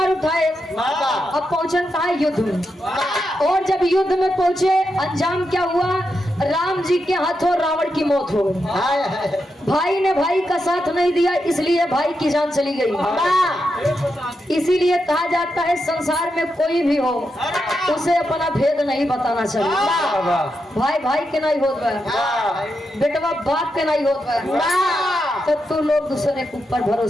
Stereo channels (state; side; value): normal; both; correlation 0.85